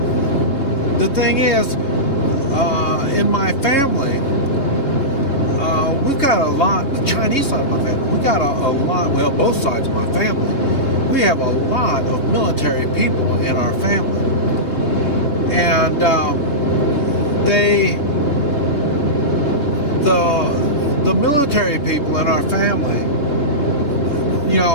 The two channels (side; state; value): right; late; 3.5 ms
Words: the thing is, in my family, we've got a lot, the Chinese side of my family, we got a lot, well, both sides of my family, we have a lot of military people in our family. And the military people in our family, you